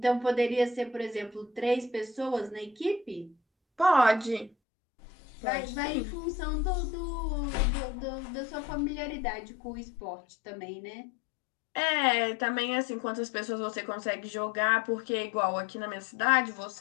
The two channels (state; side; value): drops out; right; at 4.5 s